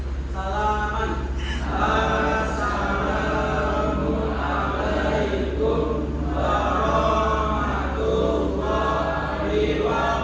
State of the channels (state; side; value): identical; both; correlation 1.00